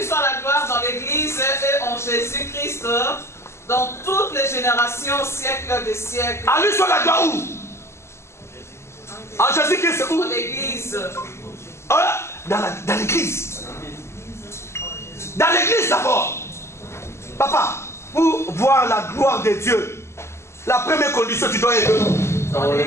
soit la gloire dans l'Église et en Jésus-Christ, dans toutes les générations, siècles des siècles. À lui soit la gloire où? En Jésus-Christ où? Dans l'Église. Dans l'Église. Dans l'Église d'abord. Papa, pour voir la gloire de Dieu, la première condition, tu dois être dans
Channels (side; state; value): right; late; 0.13 ms